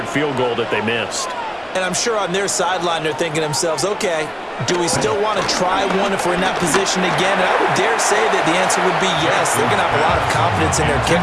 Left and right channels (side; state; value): both; identical; correlation 1.00